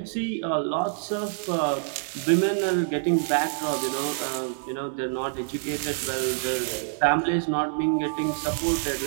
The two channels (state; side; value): silent; left; digital silence